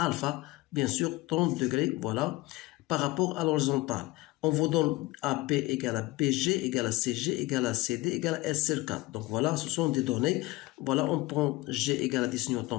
bien sûr 30 degrés, voilà, par rapport à l'horizontale. On vous donne AB égale à BG égale à CG égale à CD égale à S sur 4. Donc voilà, ce sont des données. Voilà, on prend G égale à 10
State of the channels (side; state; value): right; quieter; 19.9 dB